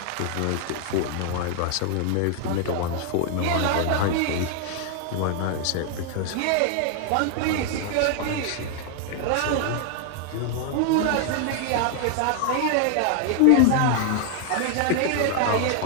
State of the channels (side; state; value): both; different; correlation 0.00